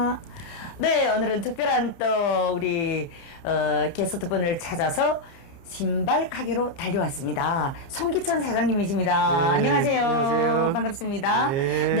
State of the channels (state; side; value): late; right; 30 ms